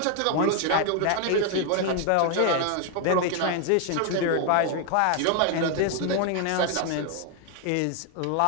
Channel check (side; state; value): both; different; correlation 0.01